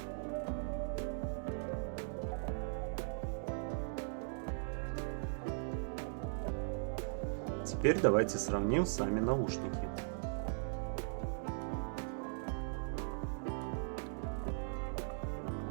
Теперь давайте сравним сами наушники.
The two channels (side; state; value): left; silent; digital silence